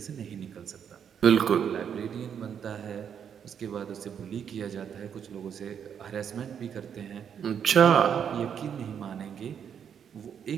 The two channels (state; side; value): quieter; left; 8.1 dB